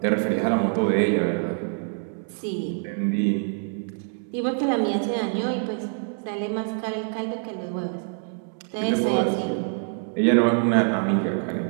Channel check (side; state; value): left; silent; 57 dB below the other